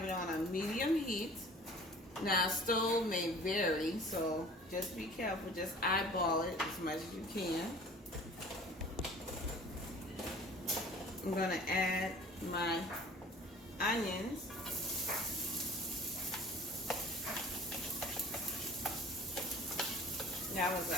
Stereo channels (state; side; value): normal; both; correlation 0.45